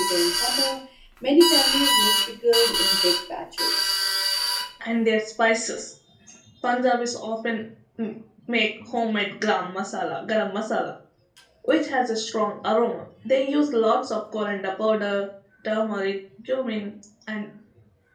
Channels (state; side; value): identical; both; correlation 1.00